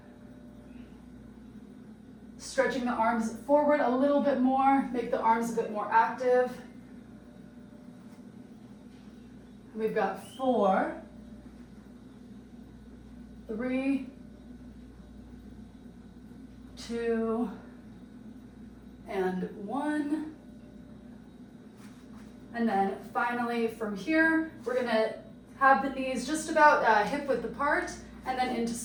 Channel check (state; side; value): identical; both; correlation 1.00